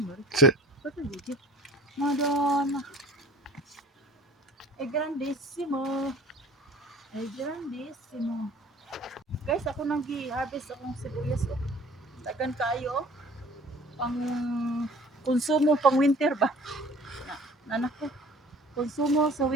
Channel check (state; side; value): normal; both; correlation 0.48